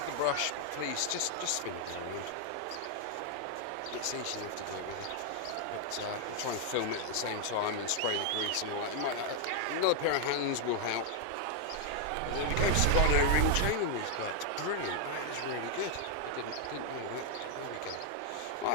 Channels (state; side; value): different; both; correlation 0.00